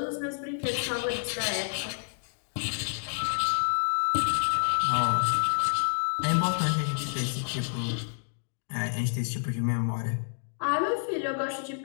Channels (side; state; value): right; silent; digital silence